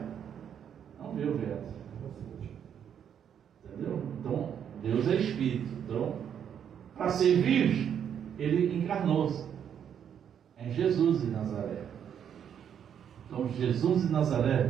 Não vê o vento. Entendeu? Então, Deus é Espírito. Então, para servir, Ele encarnou-se em Jesus de Nazaré. Então, Jesus de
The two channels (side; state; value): left; quieter; 8.7 dB